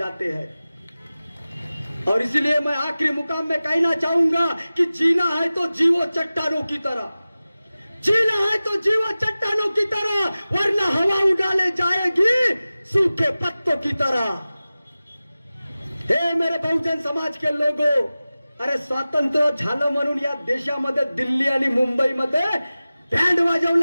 हैं. और इसलिए मैं आखिरी मुकाम में कहना चाहूंगा कि जीना है तो जीवो चट्टानों की तरह, जीना है तो जीवो चट्टानों की तरह, वरना हवा उड़ाले जाएगी सूखे पत्तों की तरह. हे मेरे बहुजन समाज के लोगो, अरे स्वातंत्र्य झालं म्हणून या देशामध्ये दिल्ली आणि मुंबईमध्ये बँड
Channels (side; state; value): both; inverted; correlation -0.97